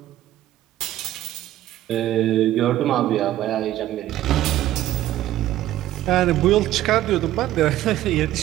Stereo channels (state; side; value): quieter; left; 13.8 dB